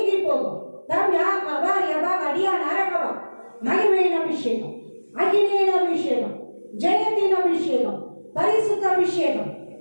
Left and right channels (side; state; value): both; inverted; correlation -1.00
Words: போகும். மகிமையின் அபிஷேகம், அகினியின் அபிஷேகம், ஜெயத்தின் அபிஷேகம், பரிசுத்த அபிஷேகம்